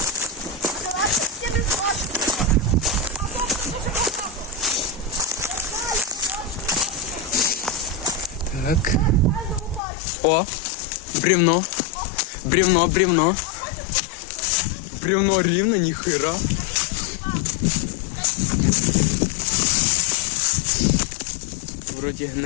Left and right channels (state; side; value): drops out; right; at 9.8 s